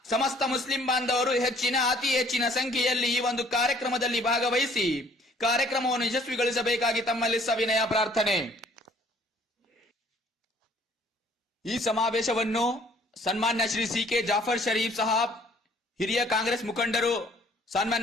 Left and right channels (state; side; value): normal; both; correlation 0.58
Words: ಸಮಸ್ತ ಮುಸ್ಲಿಂ ಬಾಂಧವರು ಅತಿ ಹೆಚ್ಚಿನ ಸಂಖ್ಯೆಯಲ್ಲಿ ಈ ಒಂದು ಕಾರ್ಯಕ್ರಮದಲ್ಲಿ ಭಾಗವಹಿಸಿ ಕಾರ್ಯಕ್ರಮವನ್ನು ಯಶಸ್ವಿಗೊಳಿಸಬೇಕಾಗಿ ತಮ್ಮಲ್ಲಿ ಸವಿನಯ ಪ್ರಾರ್ಥನೆ. ಈ ಸಮಾವೇಶವನ್ನು ಸನ್ಮಾನ್ಯ ಶ್ರೀ ಸಿ.ಕೆ. ಜಾಫರ್ ಶರೀಫ್ ಸಾಹಬ್, ಹಿರಿಯ ಕಾಂಗ್ರೆಸ್ ಮುಖಂಡರು,